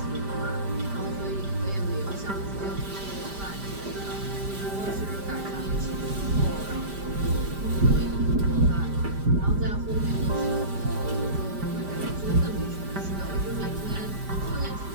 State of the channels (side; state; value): left; late; 5.0 ms